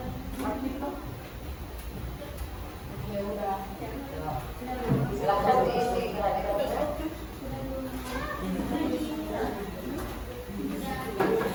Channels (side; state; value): both; identical; correlation 1.00